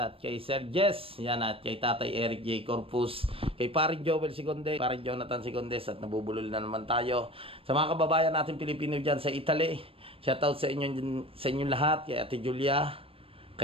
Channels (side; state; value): left; late; 0.27 ms